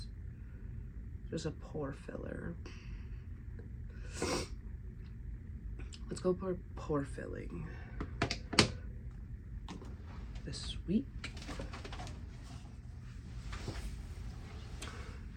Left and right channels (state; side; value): identical; both; correlation 1.00